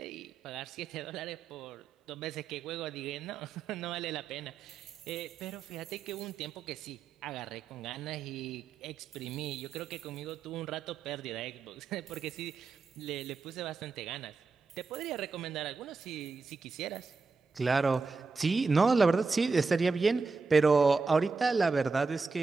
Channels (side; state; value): left; quieter; 4.4 dB